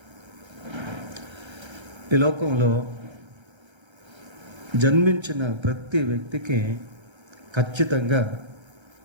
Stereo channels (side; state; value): left; late; 1.3 ms